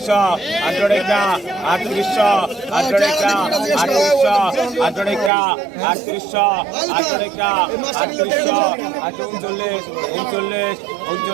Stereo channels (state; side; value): drops out; left; at 5.3 s